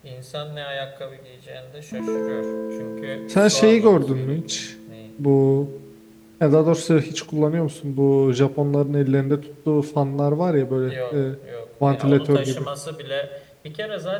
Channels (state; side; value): identical; both; correlation 1.00